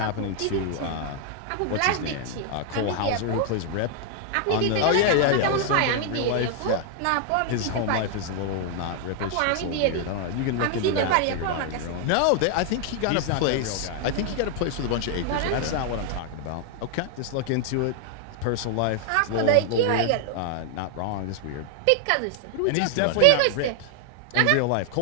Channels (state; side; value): different; both; correlation 0.00